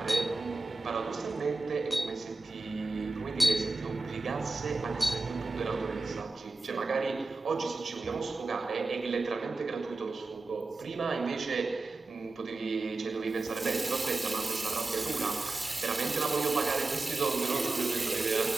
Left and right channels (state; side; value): quieter; left; 3.3 dB